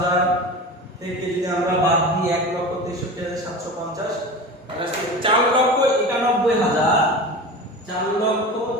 থেকে যদি আমরা বাদ দিই 1,63,750, তাহলে 4,91,000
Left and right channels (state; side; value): normal; both; correlation 0.31